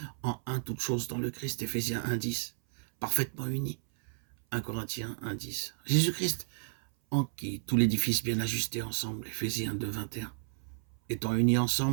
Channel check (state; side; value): silent; left; 56 dB below the other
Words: en un toutes choses dans le Christ, Éphésiens 1,10, parfaitement unis, 1 Corinthiens 1,10. Jésus-Christ, en qui tout l'édifice bien ajusté ensemble, Éphésiens 2,21. Étant unis